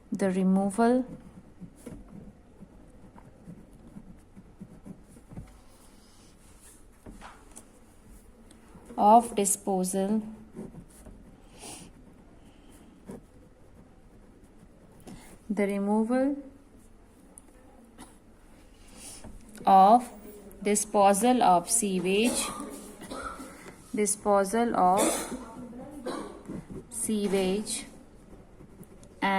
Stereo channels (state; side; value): identical; both; correlation 1.00